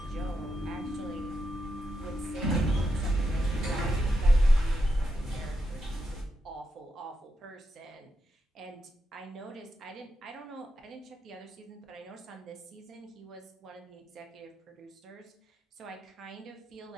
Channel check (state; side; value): normal; both; correlation 0.85